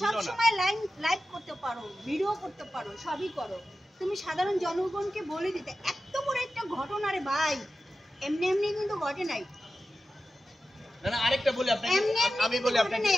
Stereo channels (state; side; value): normal; both; correlation 0.93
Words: না। তুমি সব সময় লাইভ করতে পারো, ভিডিও করতে পারো, সবই করো। তুমি সাধারণ জনগণকে বলে দিতে এত বড় একটা ঘটনা রে ভাই, এমনি এমনি কিন্তু ঘটে নাই। না আরেকটা বলি আপনাকে, আমি বলি আপনাকে,